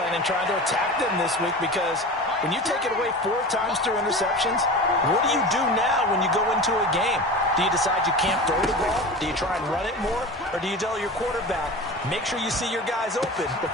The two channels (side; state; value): both; normal; correlation 0.32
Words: and trying to attack them this week, because when you take it away 4 times through interceptions, what do you do now when you go into a game? Do you decide you can't throw the ball? Do you try and run it more? Or do you tell your quarterback, make sure you see your guys open